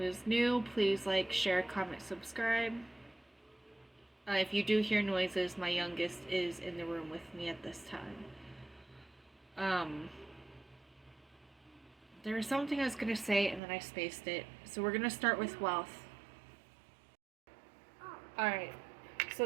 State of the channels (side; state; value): left; drops out; at 13.6 s